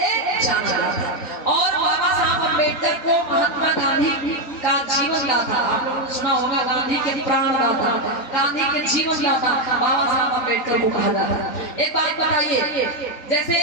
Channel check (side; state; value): right; late; 3.9 ms